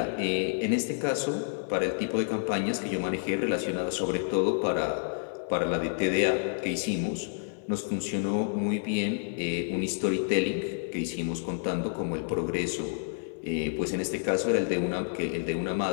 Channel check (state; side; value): silent; right; 58 dB below the other